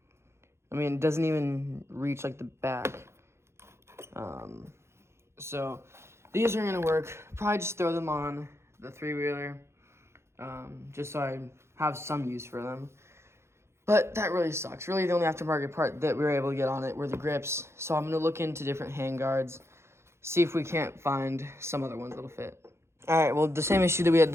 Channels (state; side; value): late; left; 0.13 ms